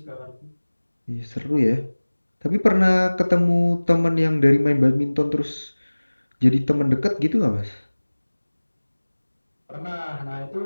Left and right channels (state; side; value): inverted; both; correlation -1.00